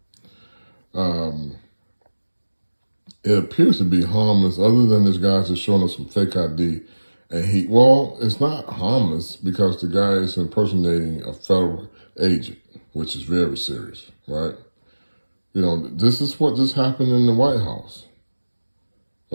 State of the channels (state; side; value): inverted; both; correlation -1.00